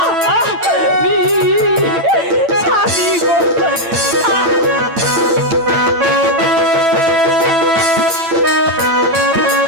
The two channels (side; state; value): left; late; 9.2 ms